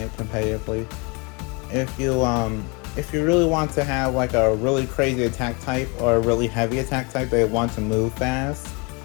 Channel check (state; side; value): quieter; right; 30.6 dB